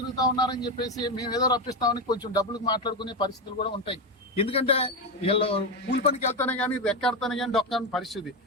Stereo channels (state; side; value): normal; both; correlation 0.13